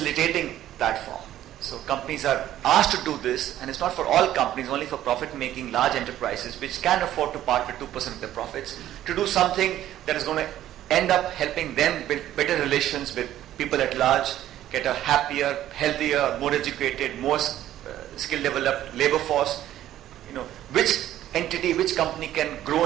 platform. So companies are asked to do this, and it's not for all companies, only for profit-making large enterprises which can afford to part with 2% of their profits, to do something that is going to end up helping them build better relations with people at large, get a happier, healthier, more educated, more skill-developed labor force. Which entity, which company can grow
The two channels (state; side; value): quieter; left; 12.7 dB